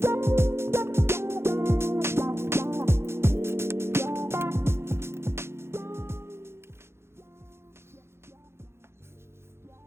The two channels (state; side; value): late; left; 0.12 ms